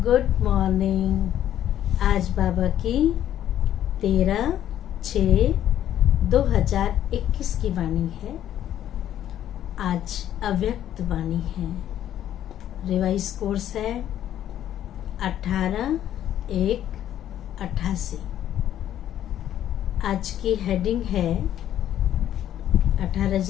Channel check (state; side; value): quieter; right; 11.3 dB